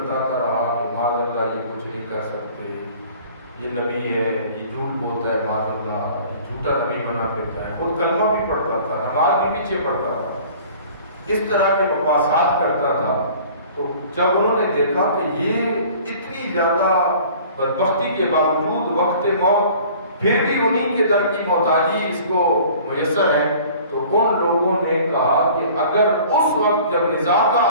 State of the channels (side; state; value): both; inverted; correlation -0.48